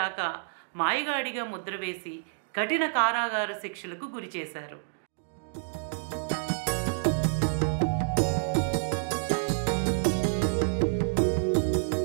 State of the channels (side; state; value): left; silent; digital silence